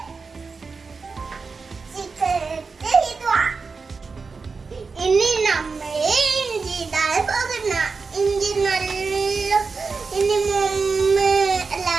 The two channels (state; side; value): quieter; left; 4.7 dB